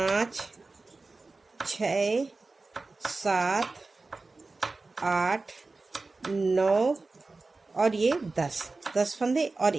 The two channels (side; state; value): left; quieter; 3.6 dB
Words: 6 7 8 9 और ये 10 फंदे और